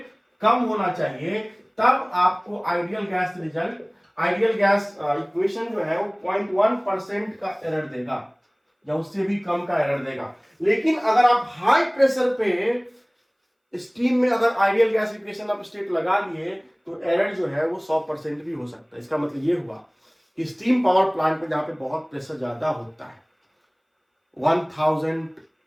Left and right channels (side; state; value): both; identical; correlation 1.00